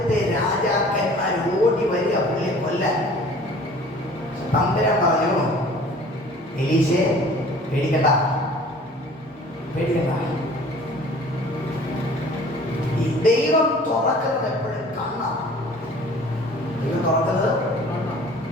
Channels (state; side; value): normal; both; correlation 0.48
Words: രാജാക്കന്മാർ ഓടി വരിക പുള്ളിയെ കൊല്ലാൻ. തമ്പുരാൻ പറഞ്ഞു, എലീശയെ പേടിക്കണ്ട, പേടിക്കണ്ട. ഈ ദൈവം തുറക്കുന്നത് എപ്പോഴും കണ്ണാണ്. ദൈവം തുറക്കുന്നത്